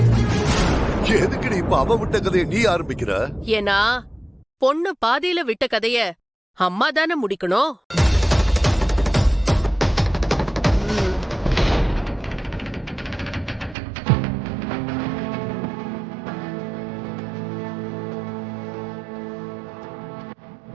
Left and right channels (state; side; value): drops out; left; at 13.8 s